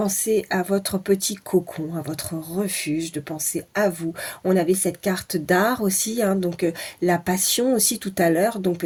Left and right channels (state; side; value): identical; both; correlation 1.00